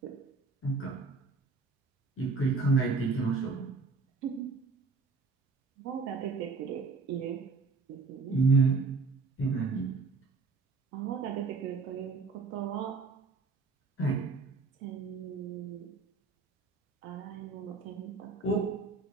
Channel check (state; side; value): quieter; left; 4.2 dB